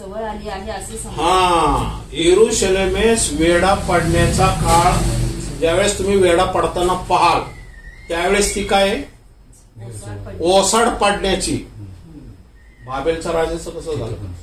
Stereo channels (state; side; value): identical; both; correlation 1.00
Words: आली आहे असे समजा. हा, यरुशलेमेस वेढा पडण्याचा काळ, ज्यावेळेस तुम्ही वेढा पडताना पाहाल त्यावेळेस ती काय ओसाड पडण्याची. बाबेलच्या राजाचं कसं झालं?